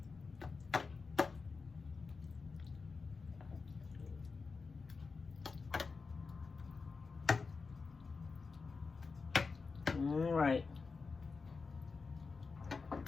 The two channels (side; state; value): right; quieter; 4.6 dB